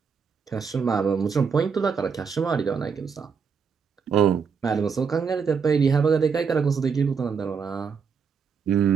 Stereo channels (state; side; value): quieter; left; 6.0 dB